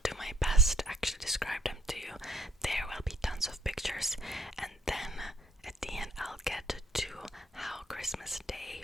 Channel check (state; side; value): normal; both; correlation 0.63